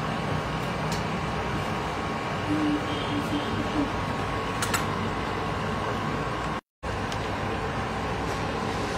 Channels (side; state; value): both; identical; correlation 1.00